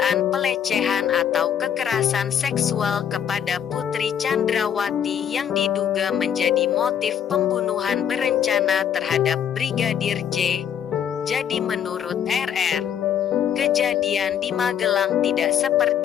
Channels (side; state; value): right; quieter; 8.8 dB